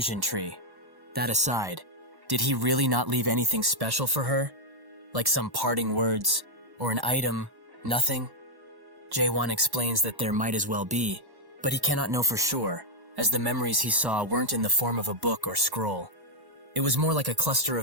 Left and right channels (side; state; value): left; late; 1.1 ms